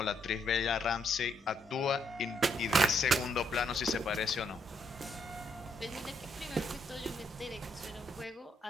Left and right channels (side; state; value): both; normal; correlation 0.74